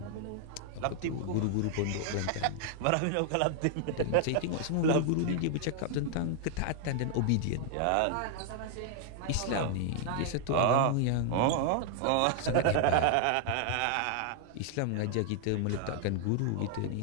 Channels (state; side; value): different; both; correlation 0.00